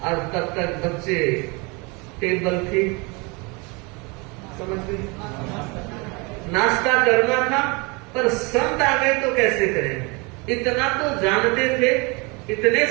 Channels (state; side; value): quieter; left; 28.4 dB